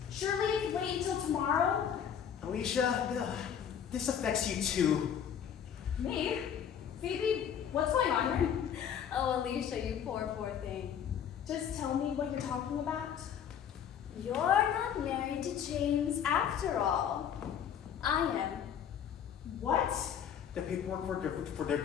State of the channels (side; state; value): right; quieter; 8.6 dB